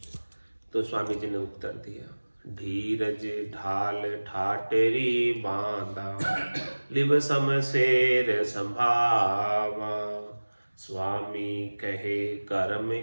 तो स्वामी जी ने उत्तर दिया, धीरज ढाल ठाटेरी बांधा, लिव समशेर संभावा, स्वामी कहे कर्म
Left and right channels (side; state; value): both; inverted; correlation -1.00